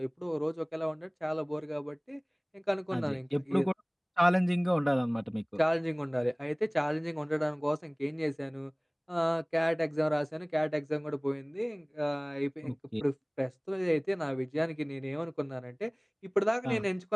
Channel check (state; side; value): identical; both; correlation 1.00